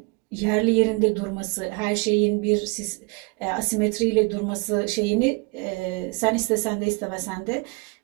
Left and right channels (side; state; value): left; quieter; 30.1 dB